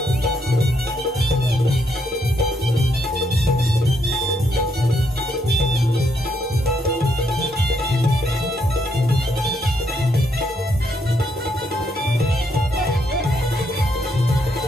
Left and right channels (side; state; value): both; normal; correlation 0.75